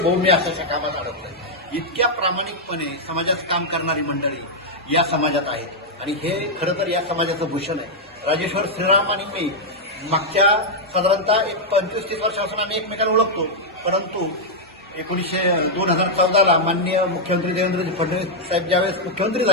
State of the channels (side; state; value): both; normal; correlation -0.03